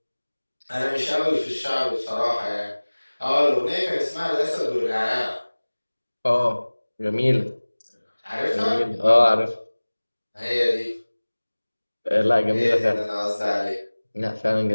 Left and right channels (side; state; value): both; inverted; correlation -1.00